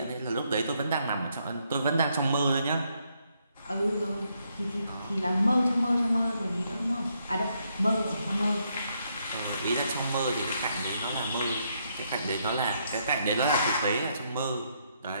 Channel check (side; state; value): both; inverted; correlation -0.75